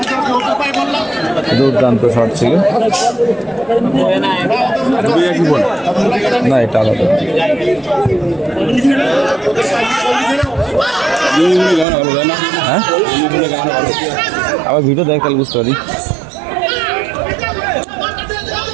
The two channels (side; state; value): left; drops out; at 11.9 s